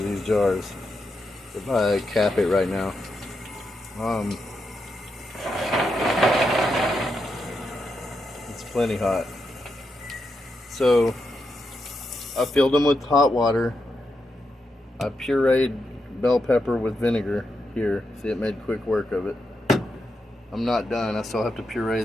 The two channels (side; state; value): both; normal; correlation 0.85